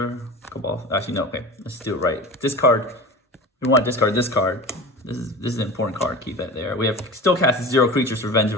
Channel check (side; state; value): both; normal; correlation 0.34